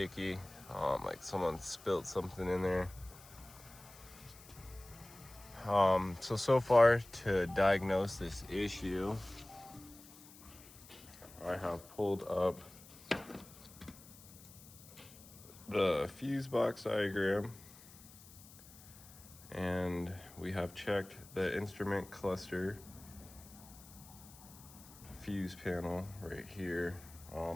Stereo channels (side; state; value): left; noise; hiss, 20 dB below the sound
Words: like someone spilled something in there. So far to diagnose this issue, I have pulled up the fuse box diagram, and we have checked the instrument cluster fuse panel right here.